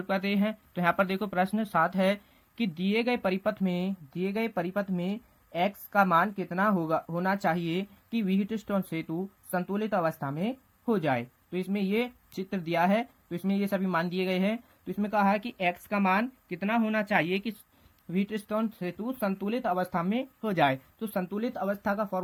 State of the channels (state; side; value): identical; both; correlation 1.00